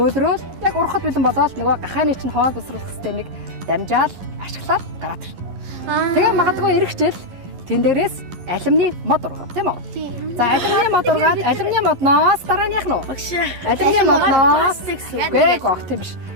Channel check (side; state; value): left; late; 11 ms